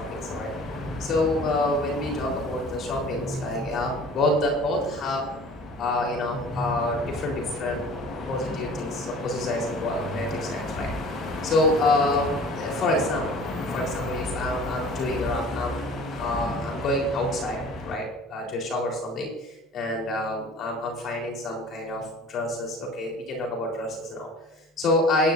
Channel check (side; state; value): both; normal; correlation 0.45